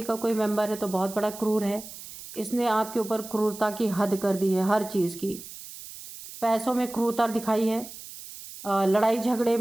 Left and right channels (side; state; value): right; noise; hiss, 14 dB below the sound